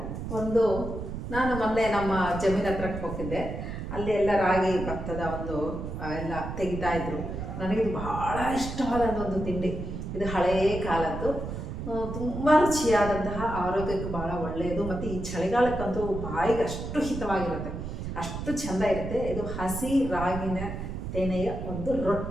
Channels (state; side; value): noise; right; rumble, 6 dB below the sound